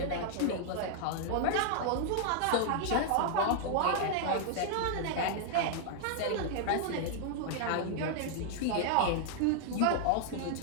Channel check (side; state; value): both; different; correlation 0.00